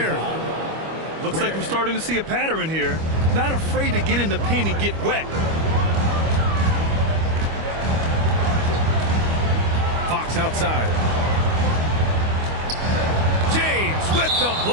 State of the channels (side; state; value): left; late; 25 ms